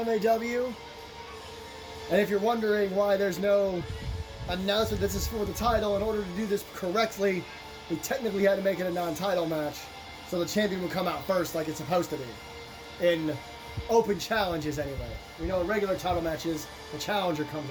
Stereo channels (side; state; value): both; identical; correlation 1.00